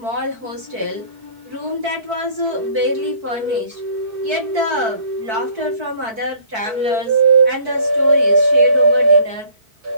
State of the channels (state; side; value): late; left; 4.5 ms